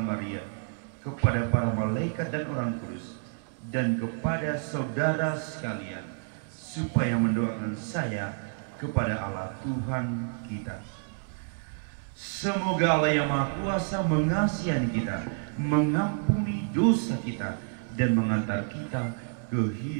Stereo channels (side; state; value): left; silent; 58 dB below the other